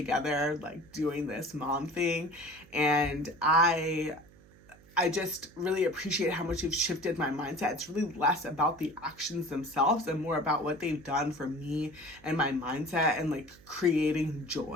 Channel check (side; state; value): right; noise; hum, 25 dB below the sound